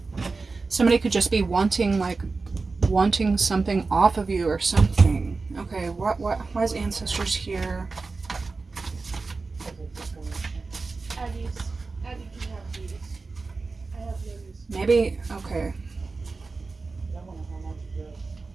Somebody could just be wanting something off of you or something. Okay, why is ancestors here? Maybe, okay.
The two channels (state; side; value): quieter; left; 4.0 dB